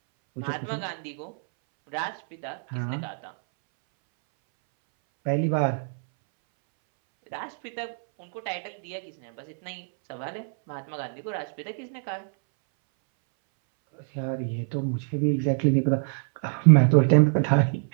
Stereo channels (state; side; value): silent; left; 61 dB below the other